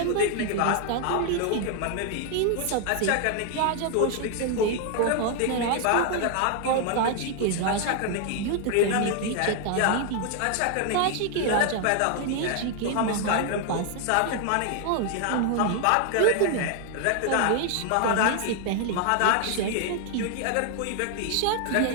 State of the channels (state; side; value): different; both; correlation 0.00